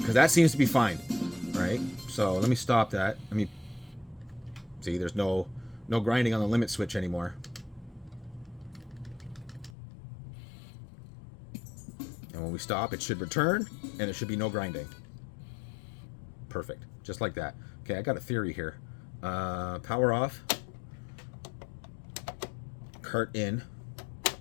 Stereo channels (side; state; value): right; drops out; at 9.7 s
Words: that seems to be fine. Right? So let me stop that. Let me... See, there's no grinding on the limit switch anymore. And when we stop, it should return, and there should be no grinding. Perfect. Just like that. Okay, I got a theory here. Power off. Cart in.